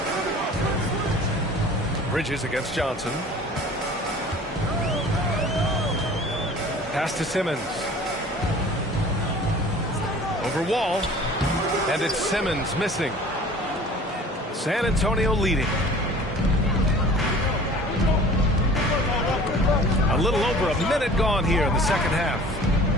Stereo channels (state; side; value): normal; both; correlation 0.45